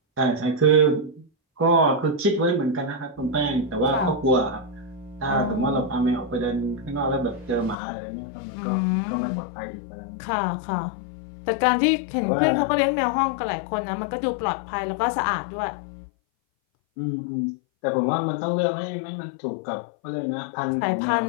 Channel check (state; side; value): drops out; right; at 7.8 s